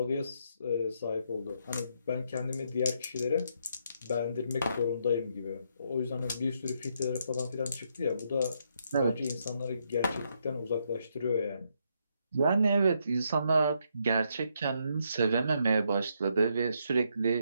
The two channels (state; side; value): inverted; both; correlation -0.76